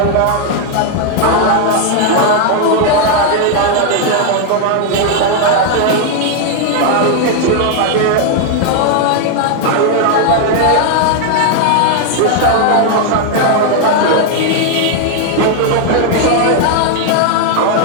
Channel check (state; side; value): different; both; correlation 0.00